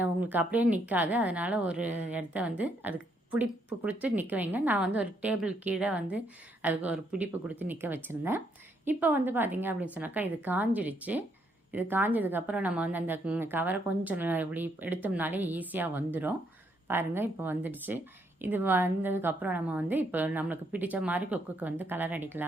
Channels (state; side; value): normal; both; correlation 0.73